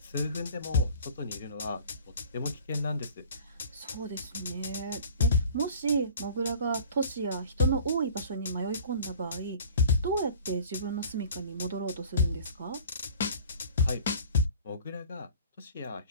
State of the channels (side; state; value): both; inverted; correlation -0.46